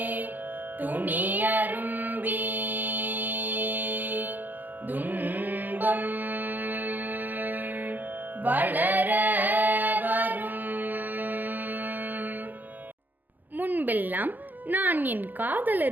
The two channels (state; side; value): late; left; 0.086 ms